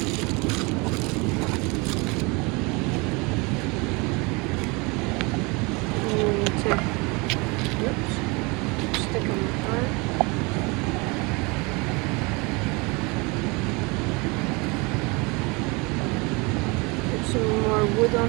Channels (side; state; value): left; quieter; 27.5 dB